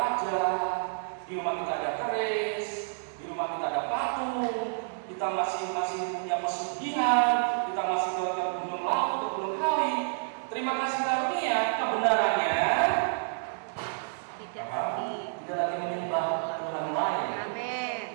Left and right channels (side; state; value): left; silent; digital silence